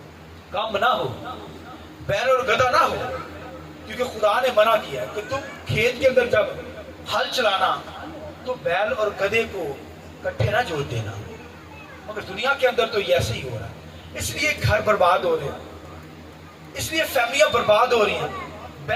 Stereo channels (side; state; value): both; identical; correlation 1.00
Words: کام نہ ہو، بیل اور گدھا نہ ہو. کیونکہ خدا نے منع کیا ہے کہ تم کھیت کے اندر جب ہل چلانا تو بیل اور گدھے کو کٹھے نہ جوڑ دینا. مگر دنیا کے اندر تو یہ ایسے ہی ہو رہا ہے. اس لیے گھر برباد ہو رہے ہیں، اس لیے فیملیاں برباد ہو رہی ہیں.